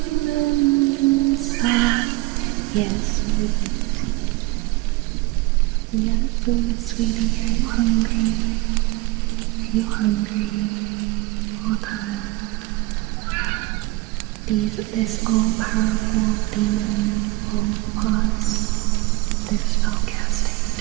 inside. Yes, sweetie. We out of food, sweetie. Are you hungry? Are you hungry? Hold on. This all-powerful demon will pause their spell casting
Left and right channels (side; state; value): left; quieter; 21.4 dB